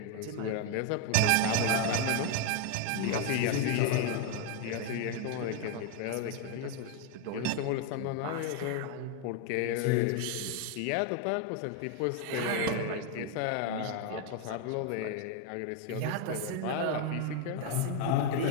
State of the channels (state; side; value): different; both; correlation 0.01